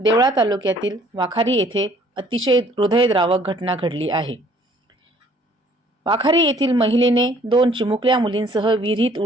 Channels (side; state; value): both; normal; correlation 0.58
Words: तालुक्यातील वाखारी येथे अतिशय हृदयद्रावक घटना घडली आहे। वाखारी येथील महिलेने 2 चिमुकल्या मुलींसह विहिरीत